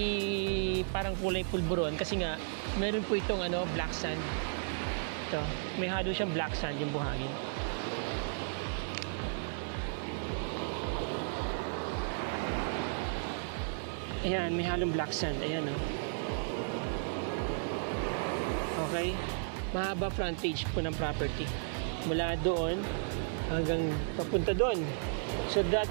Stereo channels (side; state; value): left; silent; 55 dB below the other